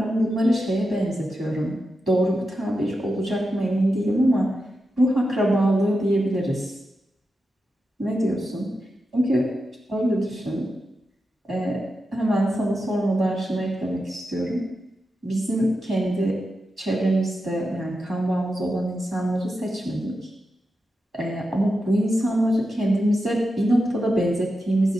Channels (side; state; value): both; normal; correlation 0.89